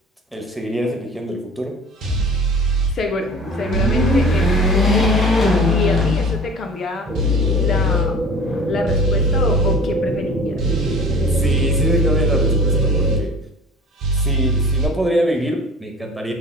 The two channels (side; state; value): both; normal; correlation 0.43